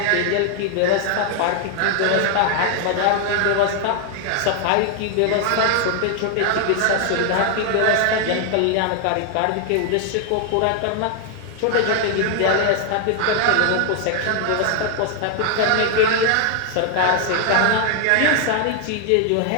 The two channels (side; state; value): both; different; correlation 0.00